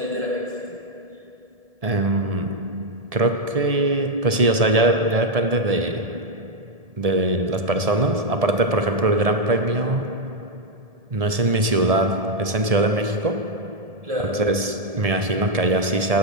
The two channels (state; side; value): late; left; 1.7 ms